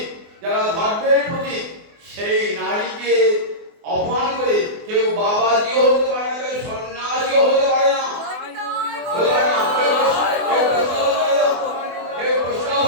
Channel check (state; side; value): late; left; 24 ms